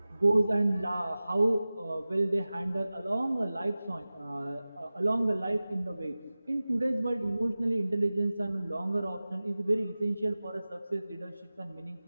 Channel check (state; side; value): inverted; both; correlation -0.97